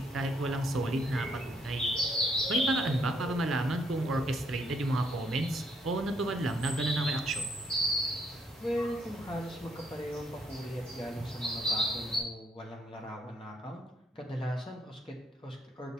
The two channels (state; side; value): normal; both; correlation 0.72